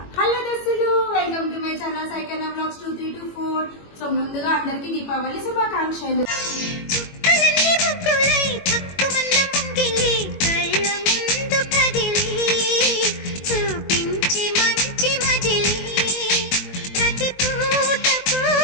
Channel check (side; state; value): right; late; 21 ms